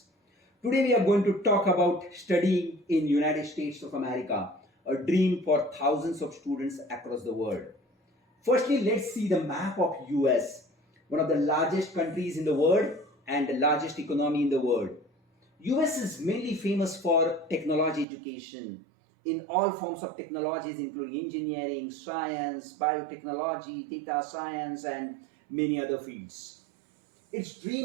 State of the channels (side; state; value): left; drops out; at 18.1 s